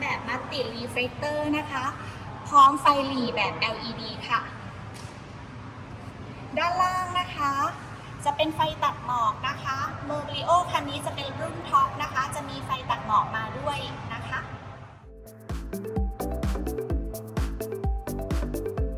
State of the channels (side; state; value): both; identical; correlation 1.00